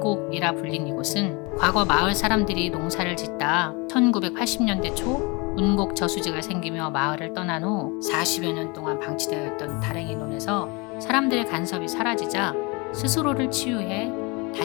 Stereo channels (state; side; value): quieter; right; 28.1 dB